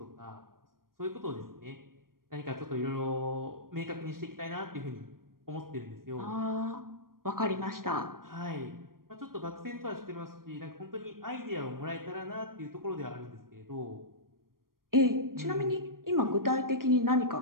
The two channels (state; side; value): late; left; 0.92 ms